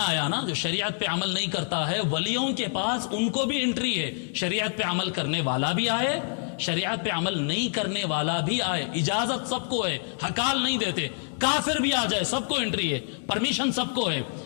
نا، جو شریعت پہ عمل نہیں کرتا ہے، ولیوں کے پاس ان کو بھی انٹری ہے۔ شریعت پہ عمل کرنے والا بھی آئے، شریعت پہ عمل نہیں کرنے والا بھی آئے، اجازت سب کو ہے، ہکال نہیں دیتے۔ کافر بھی آ جائے سب کو انٹری ہے، پرمیشن سب کو ہے۔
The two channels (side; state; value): right; silent; digital silence